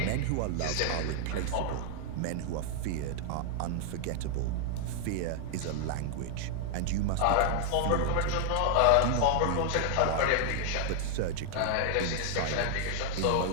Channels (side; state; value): both; different; correlation 0.00